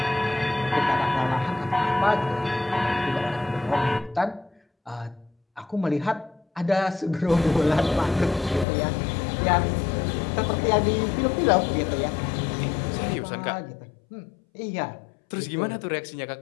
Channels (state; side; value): drops out; right; at 8.7 s